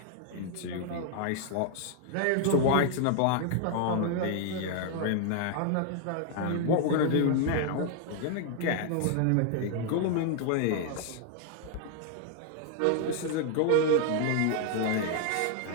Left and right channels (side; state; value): both; different; correlation 0.00